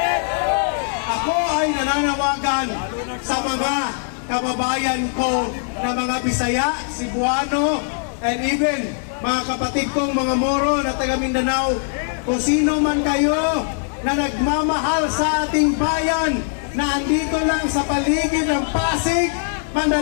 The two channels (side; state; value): right; silent; 65 dB below the other